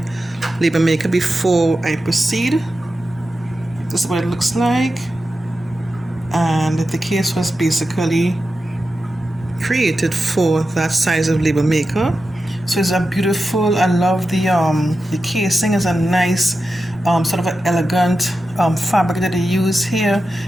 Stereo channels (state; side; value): normal; both; correlation 0.91